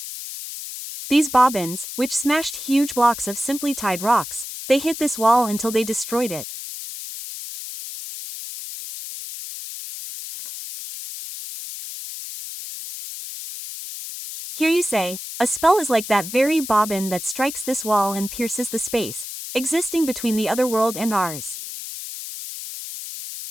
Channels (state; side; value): noise; left; hiss, 9 dB below the sound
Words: These bobbins, which smashed huge blocks of simply tied rocks, they hit this wall until they destroyed it. Here you say, a spell is like that very bobbin that strikes this wall and pierces the space existing between the other world and ours.